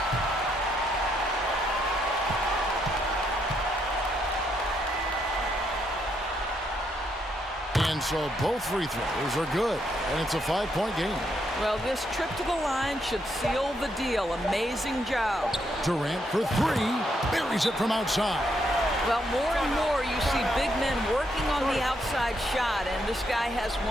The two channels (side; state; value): both; normal; correlation 0.76